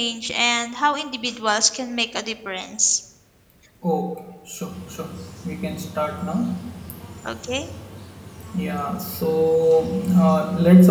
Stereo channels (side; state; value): both; identical; correlation 1.00